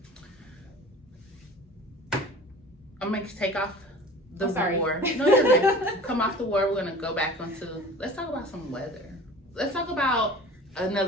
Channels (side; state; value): both; normal; correlation 0.41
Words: I'm gonna take off the Oh, sorry. war. No, you're good. Come off the war. We're gonna go back onto. Let's talk about some weather. Let's talk about